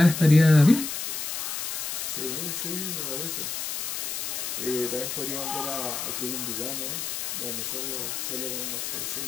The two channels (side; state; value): left; noise; hiss, 3 dB below the sound